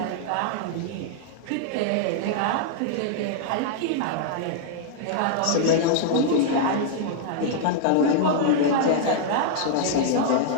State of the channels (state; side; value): different; both; correlation -0.01